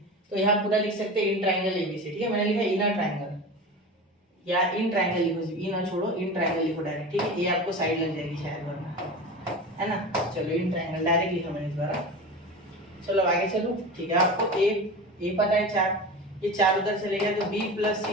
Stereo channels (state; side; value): normal; both; correlation 0.30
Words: तो यहाँ पूरा लिख सकते हैं इन ट्रायंगल ABC। ठीक है, मैंने लिखा इन ट्रायंगल, या इन ट्रायंगल लिखो, सिर्फ इन छोड़ो, इन ट्रायंगल लिखो डायरेक्ट। ठीक है, ये आपको साइड लग जाएगी शायद वरना, है ना। चलो इन ट्रायंगल डायरेक्ट लिखा मैंने इस बार। चलो आगे चलो। ठीक है, आपको ए पता है 4, ये 4 उधर चले गया तो b plus